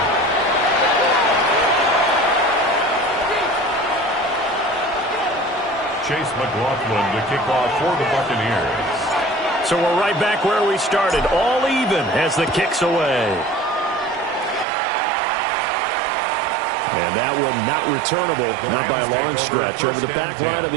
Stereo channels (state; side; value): drops out; left; at 14.7 s